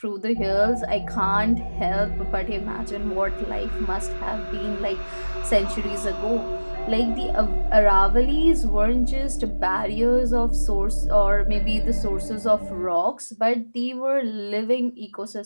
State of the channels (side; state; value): both; inverted; correlation -1.00